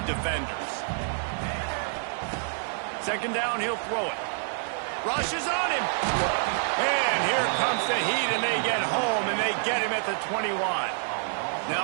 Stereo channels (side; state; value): left; silent; 56 dB below the other